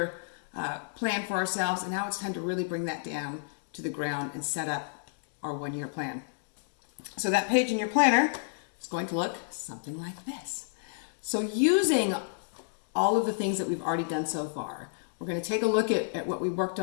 plan for ourselves, and now it's time to really bring that down to the ground and set up our one-year plan. So that page in your planner is going to look something like this. So using all of the things that we've already done so far, we're going to take a look at what we worked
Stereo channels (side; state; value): right; silent; digital silence